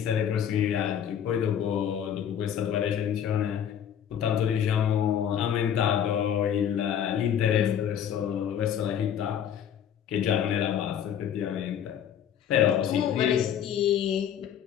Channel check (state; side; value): quieter; right; 9.2 dB